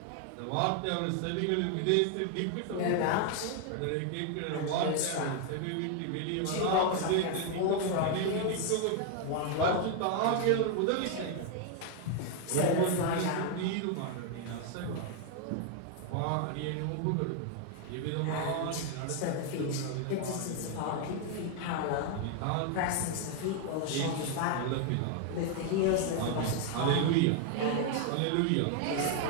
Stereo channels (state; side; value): different; both; correlation 0.01